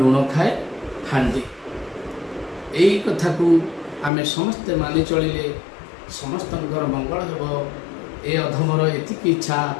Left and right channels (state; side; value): drops out; right; at 4.1 s